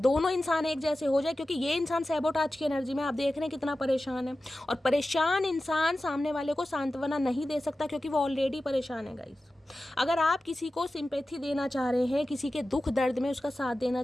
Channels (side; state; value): both; normal; correlation 0.94